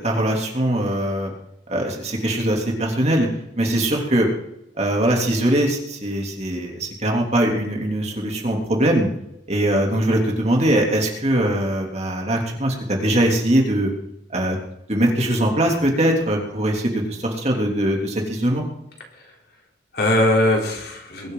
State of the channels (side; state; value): both; normal; correlation 0.64